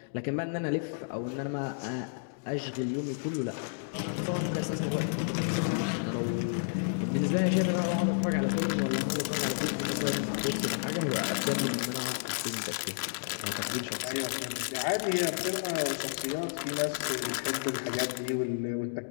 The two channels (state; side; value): silent; right; digital silence